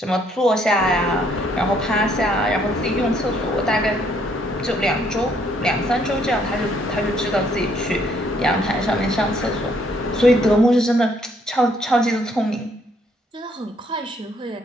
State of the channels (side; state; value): both; normal; correlation 0.67